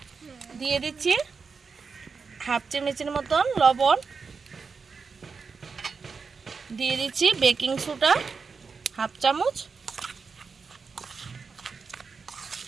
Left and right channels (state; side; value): quieter; left; 5.1 dB